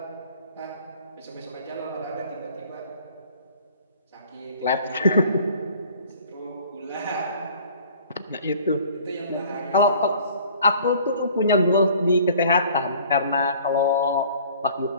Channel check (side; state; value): both; inverted; correlation -0.52